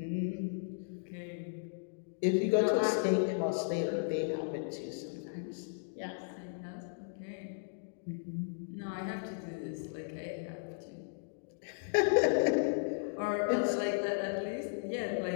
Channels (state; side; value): silent; right; digital silence